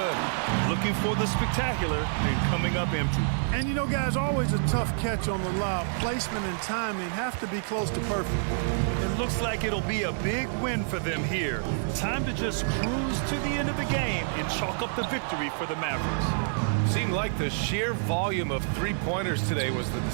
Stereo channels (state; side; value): silent; left; digital silence